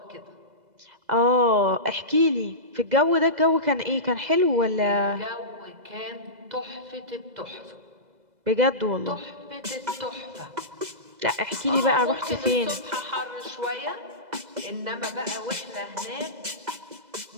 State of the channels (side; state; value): left; late; 2.0 ms